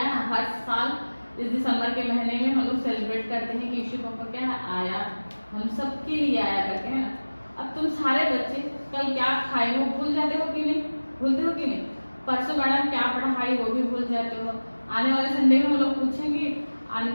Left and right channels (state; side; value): inverted; both; correlation -1.00